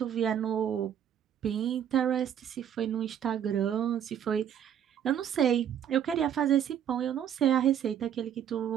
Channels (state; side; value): quieter; left; 9.4 dB